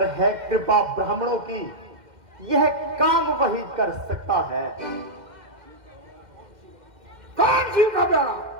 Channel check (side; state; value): left; late; 2.1 ms